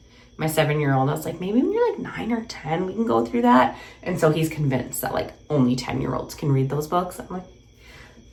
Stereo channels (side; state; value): both; identical; correlation 1.00